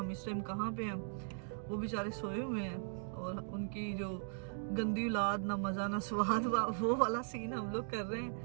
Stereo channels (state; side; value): silent; left; digital silence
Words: इस टाइम कहाँ पे हैं, वो बेचारे सोए हुए हैं। और उनकी जो गंदी औलाद, ना मज़ा ना स्वाद, वो वाला सीन हम लोग कर रहे